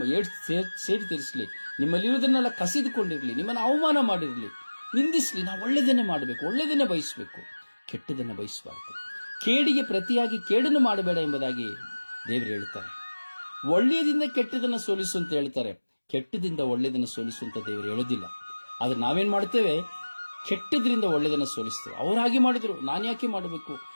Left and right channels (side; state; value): both; inverted; correlation -1.00